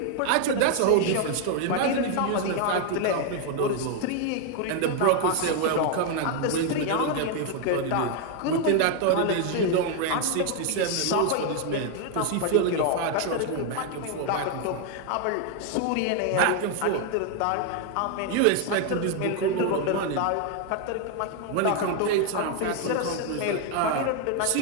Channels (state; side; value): different; both; correlation 0.01